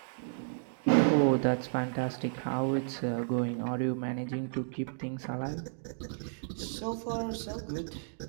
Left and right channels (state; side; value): silent; left; digital silence